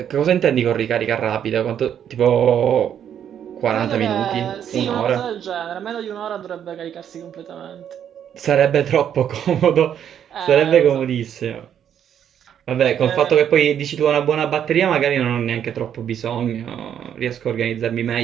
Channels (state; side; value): quieter; left; 9.2 dB